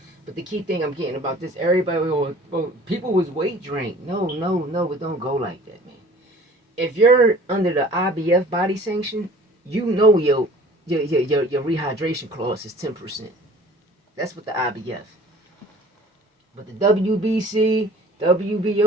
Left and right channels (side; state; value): both; normal; correlation 0.48